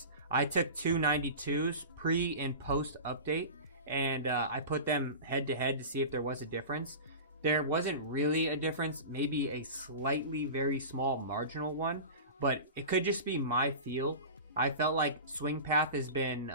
I took two 92s pre and post update. And I put them head to head to see if there was a difference. There wasn't really a difference. Maybe a slightly very small marginal one. But it could just be my feel. I felt like swing path has been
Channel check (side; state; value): both; inverted; correlation -0.31